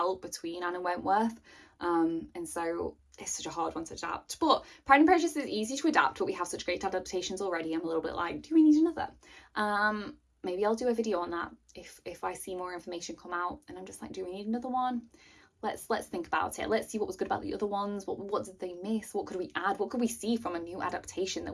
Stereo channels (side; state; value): both; identical; correlation 1.00